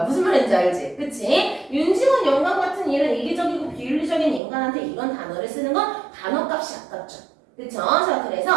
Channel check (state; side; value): drops out; left; at 4.4 s